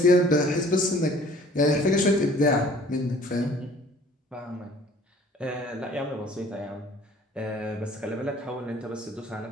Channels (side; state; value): both; normal; correlation 0.53